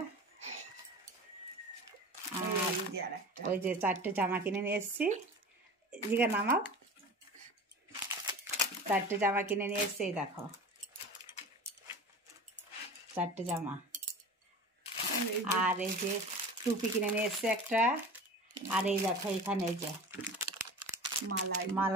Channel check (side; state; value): both; normal; correlation 0.35